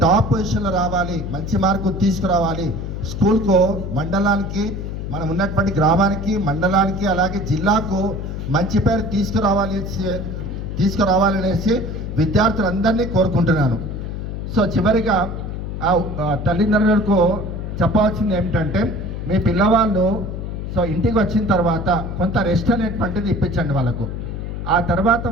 టాప్ పొజిషన్లో రావాలి, మంచి మార్కులు తీసుకురావాలి, స్కూల్కు మండలానికి మనం ఉన్నటువంటి గ్రామానికి మండలానికి అలాగే జిల్లాకు మంచి పేరు తీసుకురావాలనేసి విద్యార్థులందరినీ కోరుకుంటున్నాను. సో చివరిగా తల్లిదండ్రులకు చెప్పవలసింది ఏమిటంటే, మీ పిల్లవాళ్ళు సో ఇంటికి వచ్చిన తర్వాత కొంత రెస్ట్ అనేటువంటిది ఇప్పించండి వాళ్ళకు. ఆ తర్వాత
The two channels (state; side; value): noise; left; hum, 6 dB below the sound